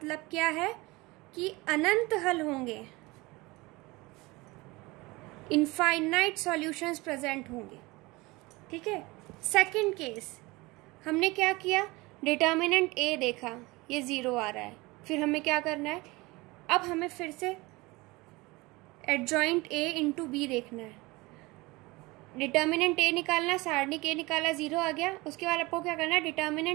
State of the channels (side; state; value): left; quieter; 22.7 dB